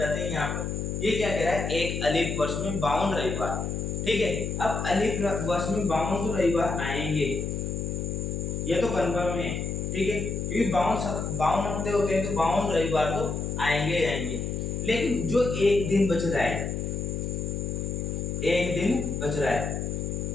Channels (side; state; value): left; noise; hum, 3 dB below the sound